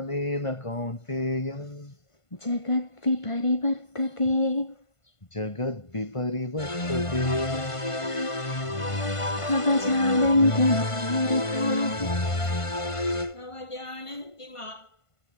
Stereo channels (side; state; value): right; late; 1.5 ms